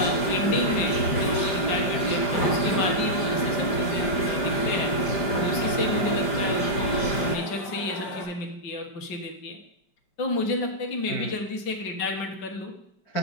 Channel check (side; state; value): right; late; 5.0 ms